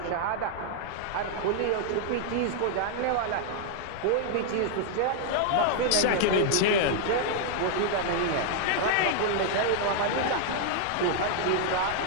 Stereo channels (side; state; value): both; different; correlation 0.00